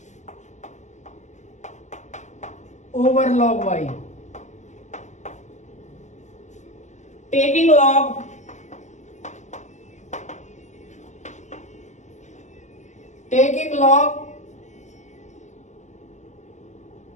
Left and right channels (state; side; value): late; right; 0.34 ms